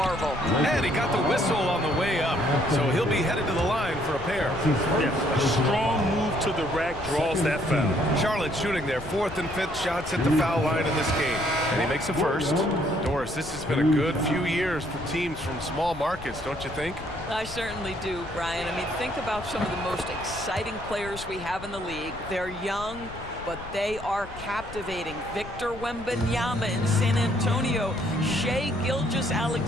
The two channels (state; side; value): noise; left; rumble, 15 dB below the sound